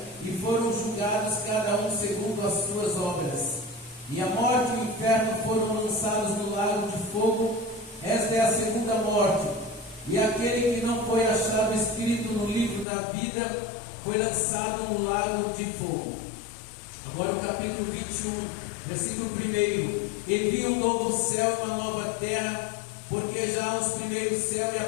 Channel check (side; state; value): right; drops out; at 12.9 s